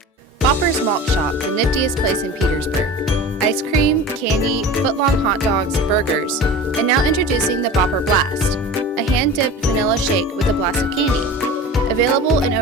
Bopper's Malt Shop, the niftiest place in Petersburg. Ice cream, candy, foot-long hot dogs, burgers, and now introducing the Bopper Blast, a hand-dipped vanilla shake with a blast of candy. Available in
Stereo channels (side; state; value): both; normal; correlation 0.35